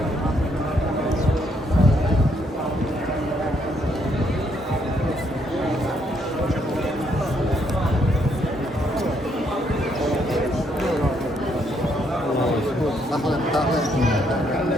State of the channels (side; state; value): both; normal; correlation 0.73